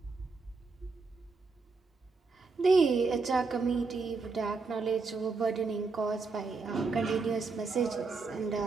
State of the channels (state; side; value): quieter; left; 4.3 dB